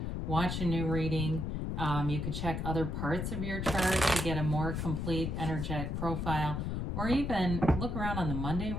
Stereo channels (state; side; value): noise; left; rumble, 2 dB below the sound